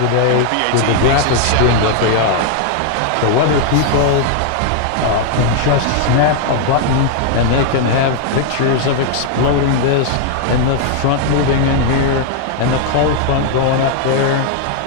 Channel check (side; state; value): both; different; correlation 0.00